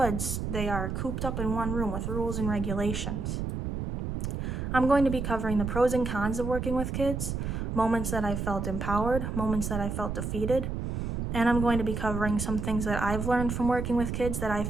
they are cooped up in one room with rules and regulations. I'm going to be covering the pros and cons of working with kids, moments that I felt empowered, moments that I felt defeated, and I'm going to be covering some things that I've learned from working with kids that I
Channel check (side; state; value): right; noise; rumble, 3 dB below the sound